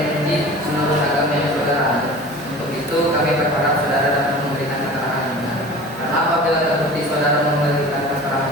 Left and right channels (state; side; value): normal; both; correlation 0.39